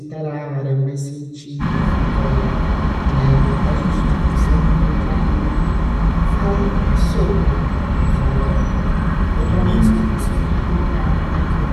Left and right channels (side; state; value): both; identical; correlation 1.00